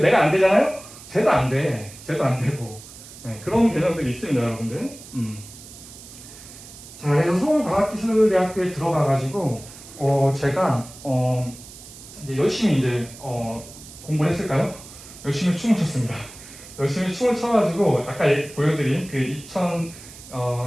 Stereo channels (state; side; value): noise; right; hiss, 17 dB below the sound